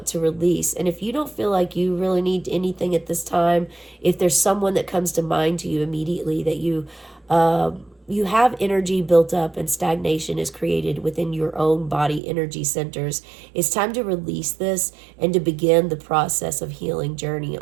to release. And if you don't feel like you really need anything at this time, if there's someone that comes to mind to you immediately that you have energy built up and stagnation is created within your own body energy centers, it's time to release this and to begin the process of healing journey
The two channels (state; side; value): drops out; left; at 12.2 s